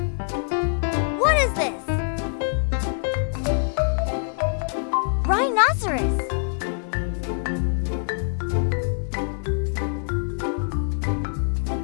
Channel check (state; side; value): silent; right; digital silence